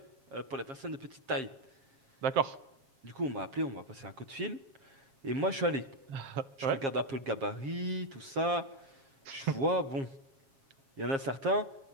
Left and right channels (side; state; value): left; late; 7.4 ms